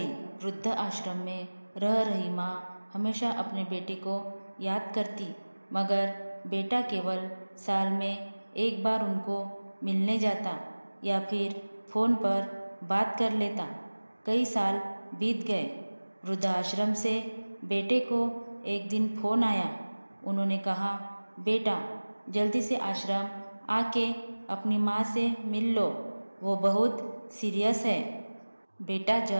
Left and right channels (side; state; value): both; inverted; correlation -1.00